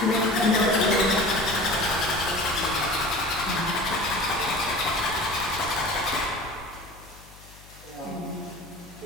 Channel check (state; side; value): noise; left; hum, 22 dB below the sound